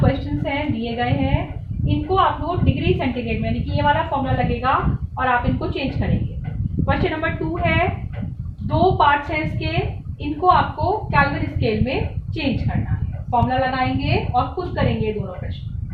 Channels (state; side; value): identical; both; correlation 1.00